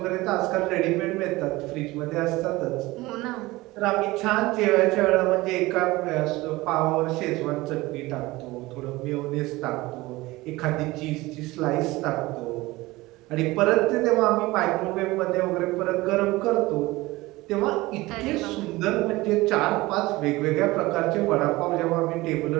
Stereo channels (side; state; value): left; quieter; 20.1 dB